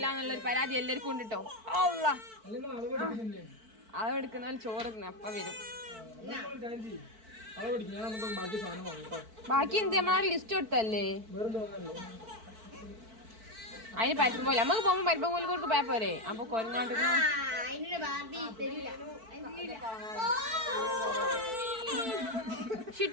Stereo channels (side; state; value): left; late; 4.5 ms